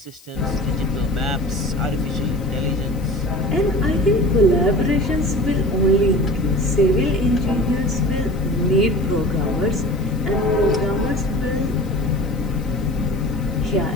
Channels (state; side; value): noise; left; hiss, 25 dB below the sound